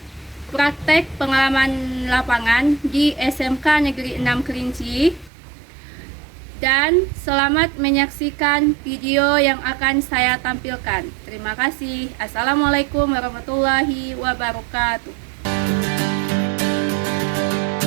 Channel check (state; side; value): drops out; left; at 5.3 s